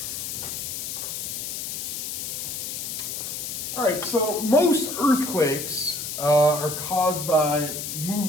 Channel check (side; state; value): left; noise; hiss, 5 dB below the sound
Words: All right, so most earthquakes are caused by